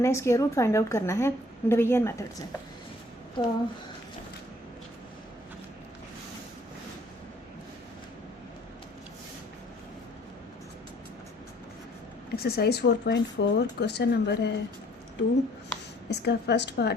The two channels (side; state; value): both; normal; correlation 0.58